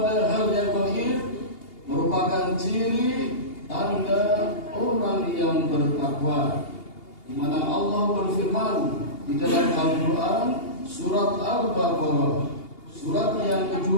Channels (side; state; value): right; late; 2.8 ms